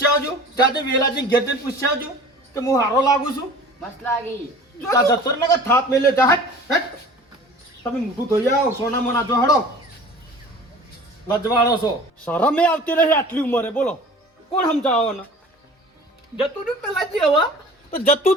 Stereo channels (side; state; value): both; normal; correlation 0.43